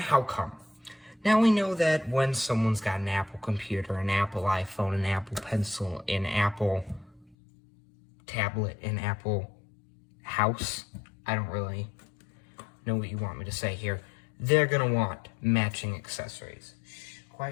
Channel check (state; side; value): drops out; right; at 7.4 s